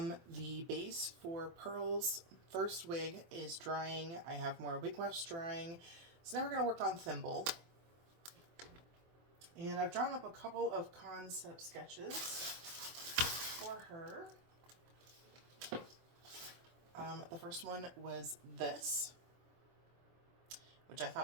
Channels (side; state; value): left; late; 24 ms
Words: the base for Pearl's first wig is drying. I have more wig wefts drying. So now we're going to work on Thimble. And I've drawn up a couple of concept sketches for her. The first one was this, which I